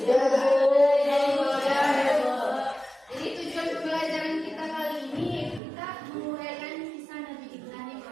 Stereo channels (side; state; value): left; drops out; at 5.6 s